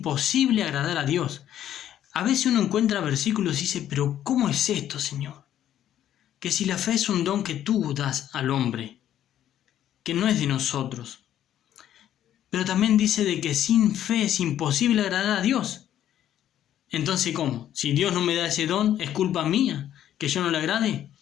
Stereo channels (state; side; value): quieter; right; 11.3 dB